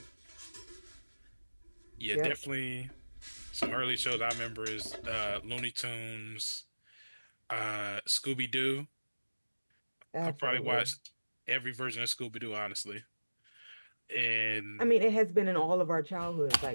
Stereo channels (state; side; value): inverted; both; correlation -1.00